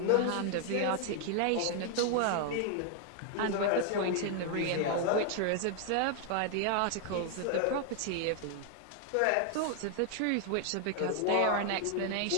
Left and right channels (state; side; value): different; both; correlation 0.00